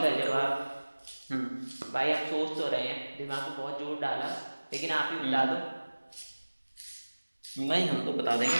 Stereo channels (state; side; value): inverted; both; correlation -1.00